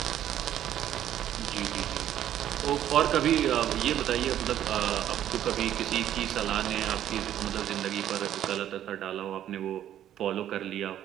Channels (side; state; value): left; quieter; 11.2 dB